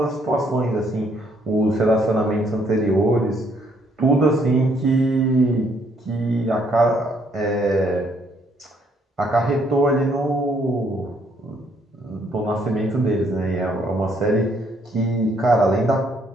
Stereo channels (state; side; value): normal; both; correlation 0.68